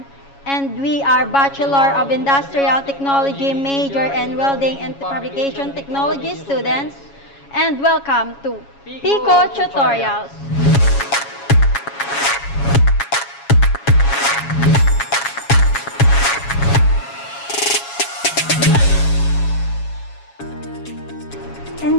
and we are Bachelor of Industrial Technology major and Welding and Fabrication Technology students, and welcome to Pico Tutorials. In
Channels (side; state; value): right; late; 7.2 ms